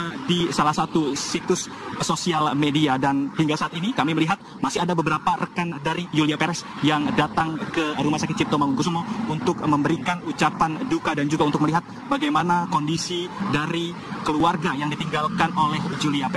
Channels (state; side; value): identical; both; correlation 1.00